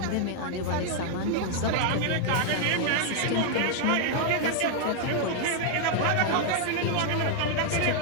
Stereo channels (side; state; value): both; different; correlation 0.00